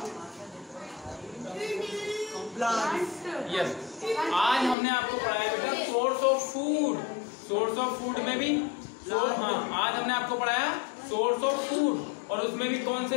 यस, आज हमने आपको पढ़ाया बेटा source of food. Source of food में भी हाँ, आज हमने आपको पढ़ाया सोर्स ऑफ फूड, और उसमें भी कौन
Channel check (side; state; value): right; drops out; at 4.8 s